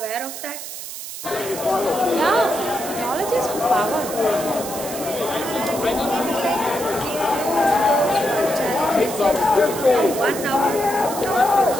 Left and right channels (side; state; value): right; noise; hiss, 9 dB below the sound